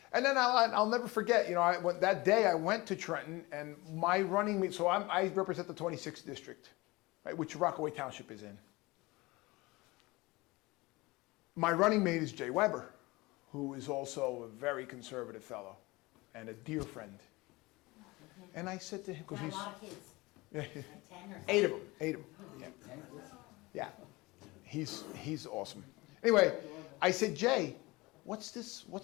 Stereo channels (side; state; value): right; quieter; 22.4 dB